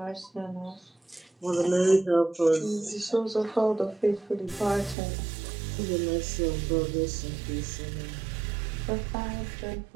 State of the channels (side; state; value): left; drops out; at 5.0 s